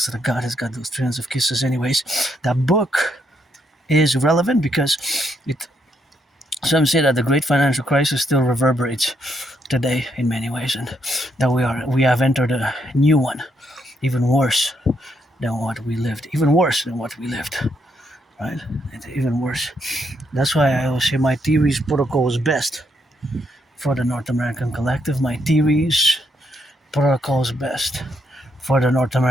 of the Goddess got those trillions of kisses. Anyways, that book is relevant because some say that the Great Financial Crisis still reverberates today in many ways, and that we have entered a new one, even worse than what we lived. Right? It's even worse. That's why I always say my theories protocol is best for the North American Collective. My theories protocol is best for the North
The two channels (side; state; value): both; normal; correlation 0.76